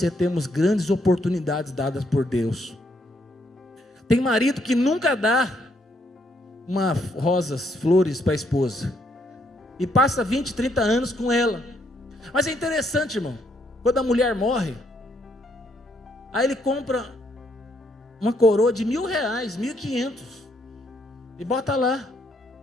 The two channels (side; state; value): both; normal; correlation 0.72